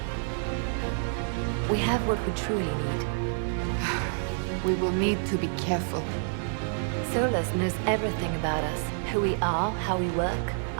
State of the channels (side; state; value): left; silent; digital silence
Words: We have what we truly need. We will need to be careful. Solus knows everything about us. Who we are, how we work,